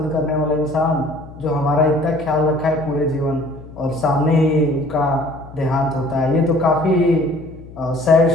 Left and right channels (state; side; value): noise; left; hum, 18 dB below the sound